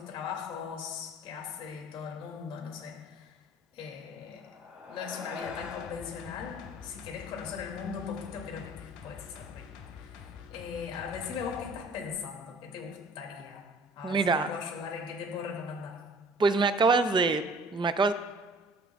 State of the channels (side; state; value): both; normal; correlation 0.51